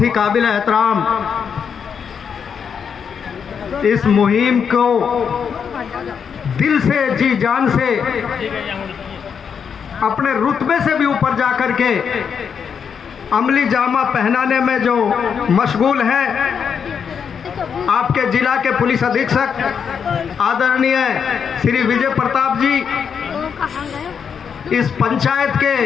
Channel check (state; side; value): quieter; right; 6.9 dB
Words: ही काबिल एहतराम इस मुहिम को दिल से जी जान से अपने रुतबे से भी ऊपर जाकर के अमली जामा पहनाने में जो मशगूल है आपके जिला के पुलिस अधीक्षक आदरणीय श्री विजय प्रताप जी, इस पंचायत